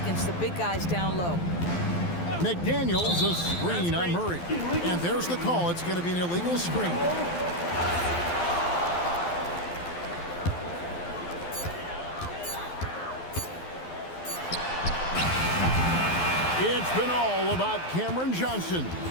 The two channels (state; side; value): late; right; 12 ms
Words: the big guys down low. McDaniels a screen on Murray. And there's the call. It's going to be an illegal screen. It's been all about Cameron Johnson